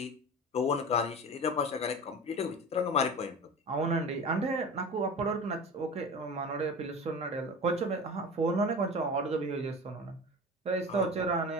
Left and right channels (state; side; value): normal; both; correlation 0.32